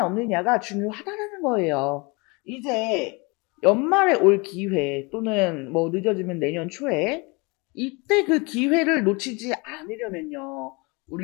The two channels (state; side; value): quieter; right; 28.1 dB